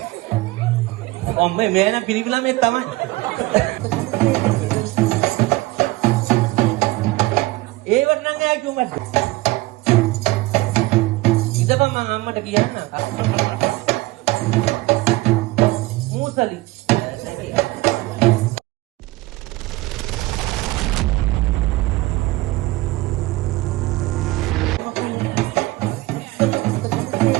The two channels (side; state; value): left; quieter; 20.1 dB